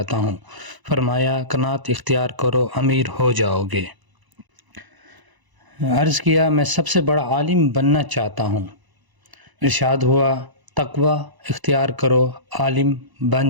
ہوں۔ فرمایا، قناعت اختیار کرو، امیر ہو جاؤ گے۔ عرض کیا، میں سب سے بڑا عالم بننا چاہتا ہوں۔ ارشاد ہوا، تقوی اختیار کرو، عالم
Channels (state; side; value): late; left; 1.0 ms